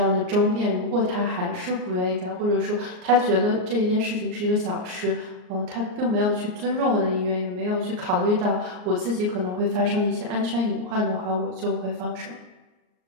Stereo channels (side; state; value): left; late; 38 ms